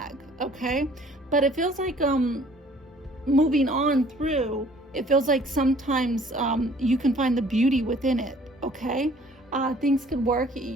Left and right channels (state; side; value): normal; both; correlation 0.55